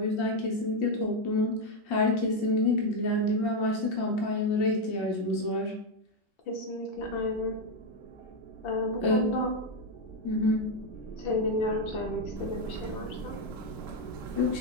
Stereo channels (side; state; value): right; late; 1.3 ms